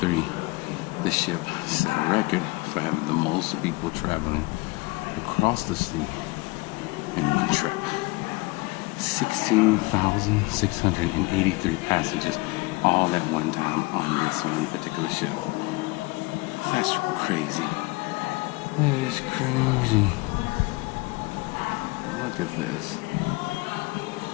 the ship set a record for having the most people traveling across the sea in one trip. 16,683 passengers all at one time on this one particular ship. That's crazy. That is crazy. Look at this.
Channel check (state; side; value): quieter; right; 23.8 dB